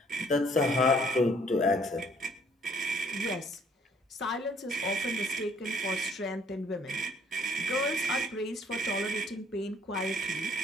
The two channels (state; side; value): normal; both; correlation 0.62